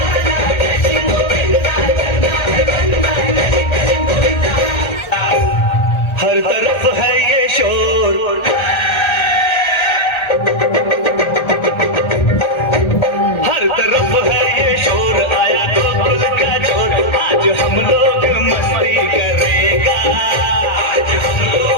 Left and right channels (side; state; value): right; late; 1.3 ms